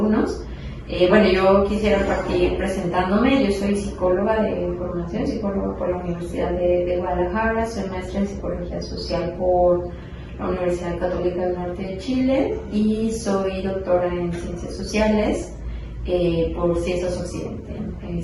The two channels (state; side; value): identical; both; correlation 1.00